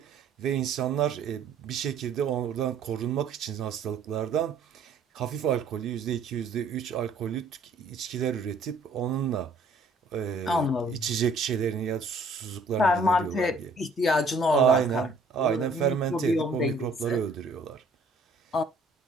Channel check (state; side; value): quieter; left; 3.2 dB